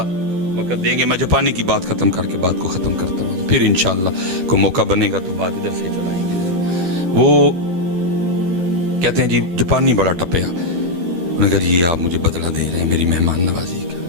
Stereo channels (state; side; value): late; left; 12 ms